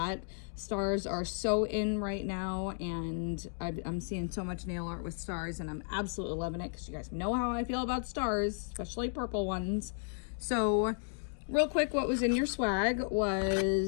Stars are so in right now, and I'm seeing so much nail art with stars, and I'm absolutely loving it because you guys know how I feel about stars, especially purple ones. So real quick, what was in your swag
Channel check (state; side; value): silent; right; digital silence